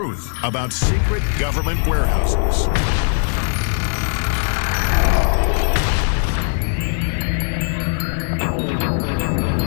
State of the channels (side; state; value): right; silent; 59 dB below the other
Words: about secret government warehouses.